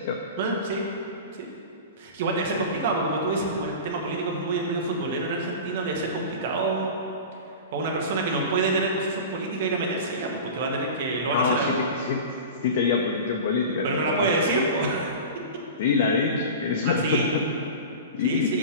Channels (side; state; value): both; inverted; correlation -0.31